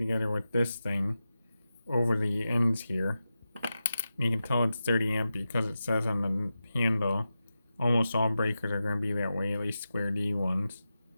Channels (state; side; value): inverted; both; correlation -0.92